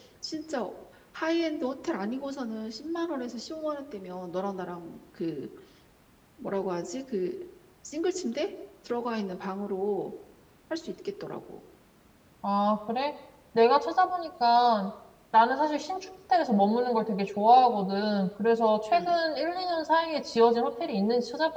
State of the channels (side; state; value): both; identical; correlation 1.00